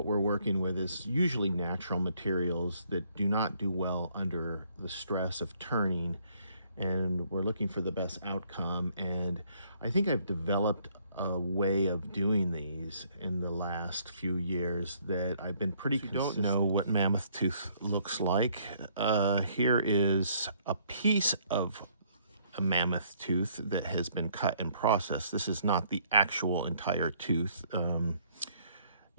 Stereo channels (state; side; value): inverted; both; correlation -0.65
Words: we're working with is usually natural materials that do not do well under the stress of turning, and we're looking for the best outcome. And I think I've developed a way of doing these in the last few years that I've been pretty consistent. If you don't know what mammoth tooth looks like, here is a piece of a mammoth tooth that has been cut and processed. This is not the actual entire tooth.